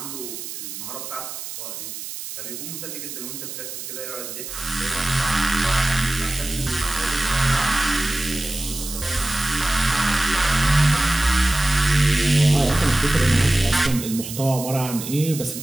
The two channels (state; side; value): noise; right; hiss, 9 dB below the sound